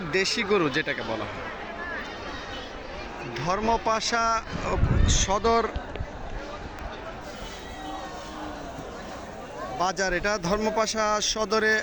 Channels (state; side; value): identical; both; correlation 1.00